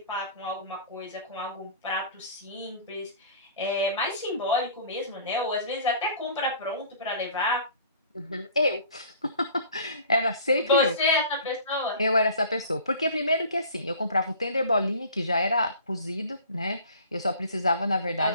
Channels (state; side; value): inverted; both; correlation -0.47